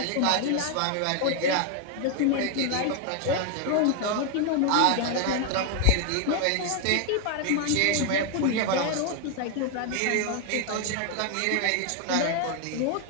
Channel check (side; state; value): both; different; correlation 0.00